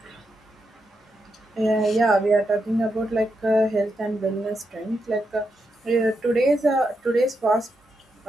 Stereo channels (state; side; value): normal; both; correlation 0.84